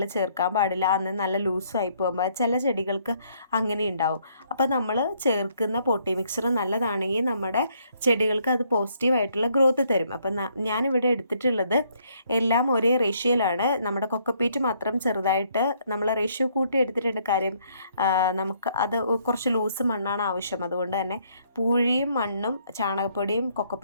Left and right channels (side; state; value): both; inverted; correlation -0.68